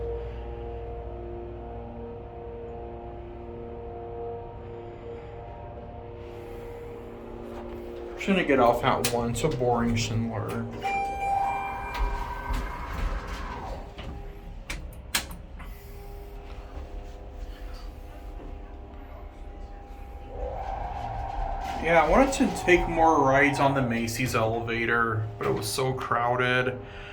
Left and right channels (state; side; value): identical; both; correlation 1.00